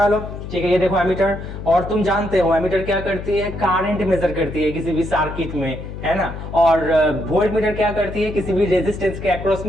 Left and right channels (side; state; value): left; noise; hum, 9 dB below the sound